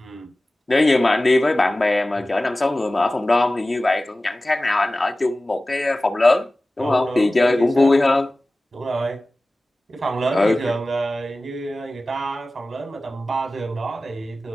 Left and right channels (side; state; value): both; normal; correlation 0.97